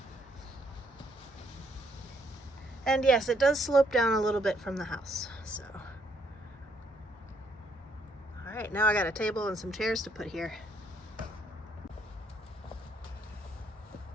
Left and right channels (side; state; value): both; normal; correlation 0.70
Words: And yes, it does slope down a little bit from the house, so. All right, now I got a table and some chairs to put here.